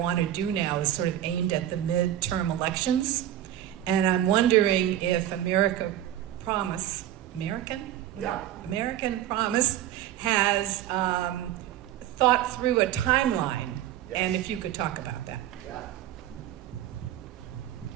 want to do now is sort of aimed at the midterm elections, and I'm wondering if American Promise has thought through a timeline, yes. And if you could talk about that. Yeah.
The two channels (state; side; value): quieter; left; 12.2 dB